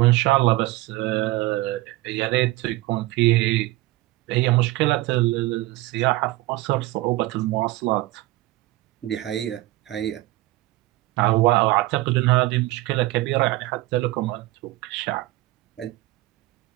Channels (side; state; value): left; quieter; 18.3 dB